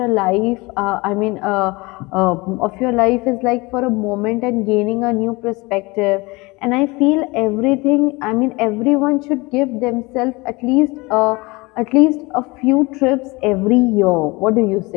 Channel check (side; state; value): right; quieter; 24.3 dB